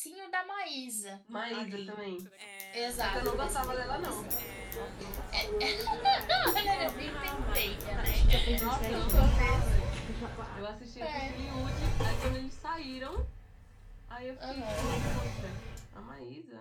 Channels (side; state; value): both; identical; correlation 1.00